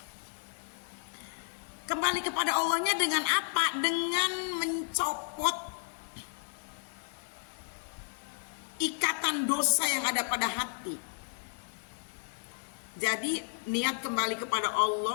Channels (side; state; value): right; silent; 56 dB below the other